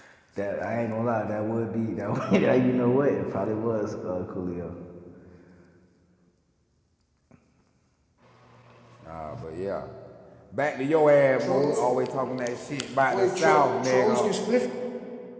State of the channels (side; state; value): both; identical; correlation 1.00